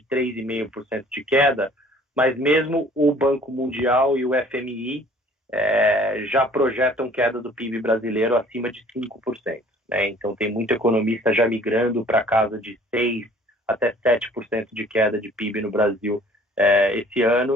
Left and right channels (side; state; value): both; normal; correlation 0.53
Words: 3,5% de queda, mas mesmo o Banco Mundial e o FMI já projetam queda do PIB brasileiro acima de 5%. Né? Então tem muito economista já migrando para casa de 6% até 7% de queda de PIB no Brasil esse